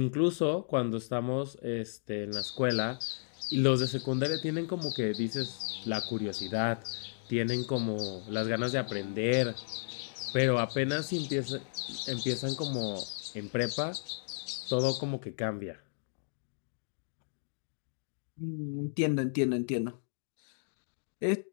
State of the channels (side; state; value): right; silent; digital silence